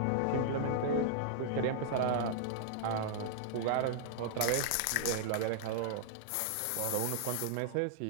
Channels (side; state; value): both; different; correlation -0.01